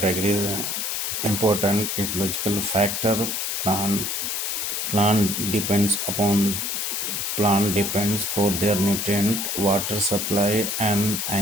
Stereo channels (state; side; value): noise; left; hiss, 1 dB below the sound